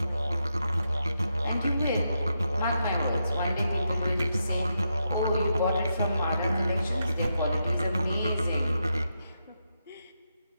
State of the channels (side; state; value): both; inverted; correlation -0.84